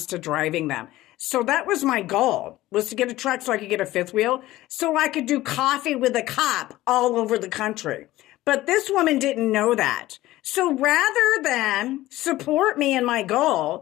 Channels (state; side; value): quieter; right; 16.5 dB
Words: driving them. So that was my goal, was to get a truck so I could get a fifth wheel so I could do coffee with a cop all over the country. But this woman didn't know that. So rather than support me in my